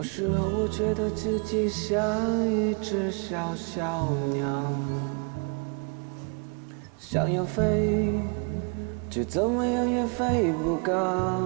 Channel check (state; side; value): quieter; left; 37.6 dB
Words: 时候我觉得自己像一只小小鸟，想要飞，却怎么样也飞不高。